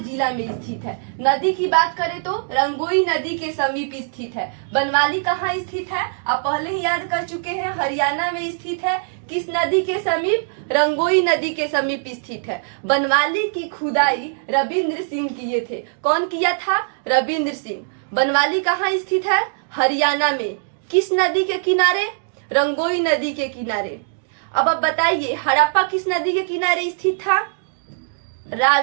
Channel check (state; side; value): silent; left; digital silence